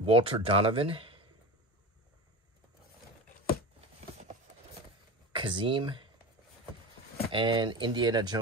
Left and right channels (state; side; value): normal; both; correlation 0.29